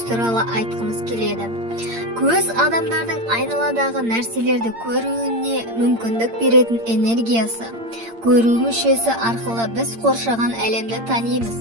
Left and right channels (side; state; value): left; late; 8.7 ms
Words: туралы айтқымыз келеді. Көз адамдардың айналадағы нәрселерді көруіне мүмкіндік беретін энергиясы. Көру мүшесі арқылы біз қоршаған әлемді танимыз.